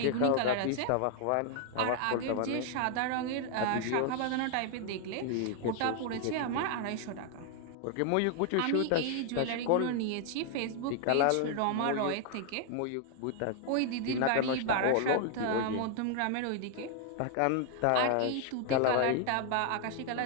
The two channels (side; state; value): both; different; correlation 0.00